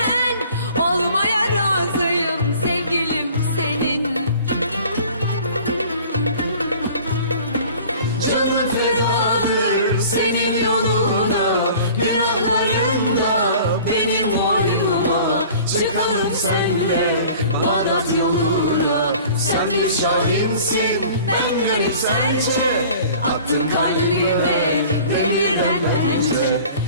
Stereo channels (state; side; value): inverted; both; correlation -0.46